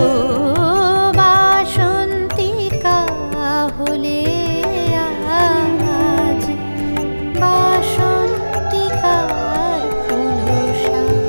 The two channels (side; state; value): both; inverted; correlation -1.00